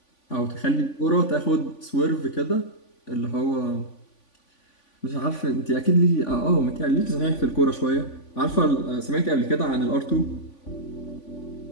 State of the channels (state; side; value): late; right; 3.5 ms